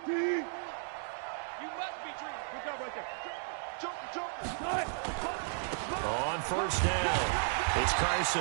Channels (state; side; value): silent; left; digital silence